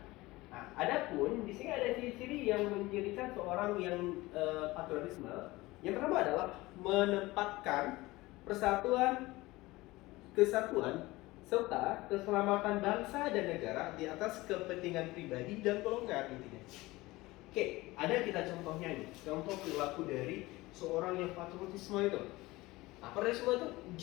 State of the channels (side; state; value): right; quieter; 20.1 dB